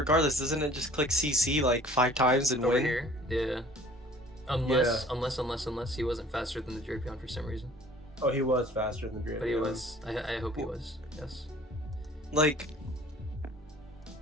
doesn't it just click CC like 5 times and Over win? here, yeah. Unless he wasn't faster than the Drapion for some reason. Oh, he was faster than Drapion. But he was. I hope he was. Yes. Like.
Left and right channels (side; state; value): both; normal; correlation 0.51